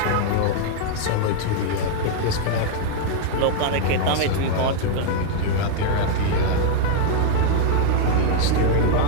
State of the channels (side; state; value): both; different; correlation 0.00